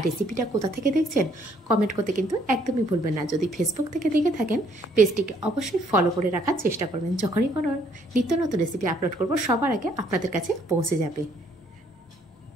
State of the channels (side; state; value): both; normal; correlation 0.66